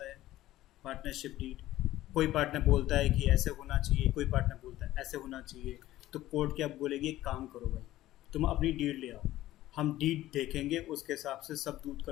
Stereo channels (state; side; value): quieter; right; 15.1 dB